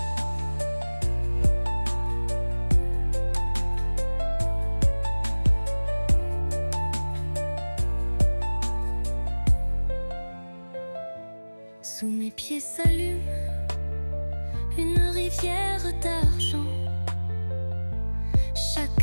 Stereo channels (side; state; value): both; inverted; correlation -1.00